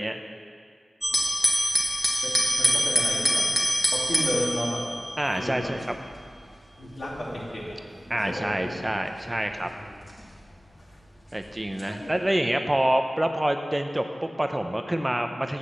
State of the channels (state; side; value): normal; both; correlation 0.98